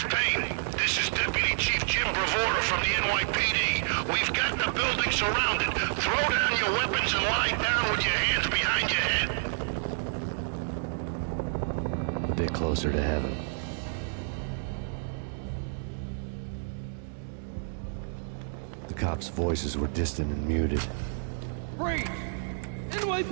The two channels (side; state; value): left; silent; digital silence